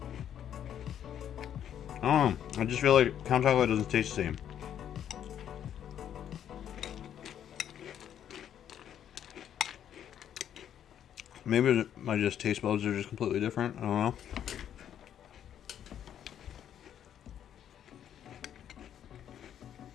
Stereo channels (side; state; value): right; quieter; 9.8 dB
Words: I don't know. I just feel like Count Chocula doesn't taste the same. Maybe my just taste buds are just completely different. I don't know.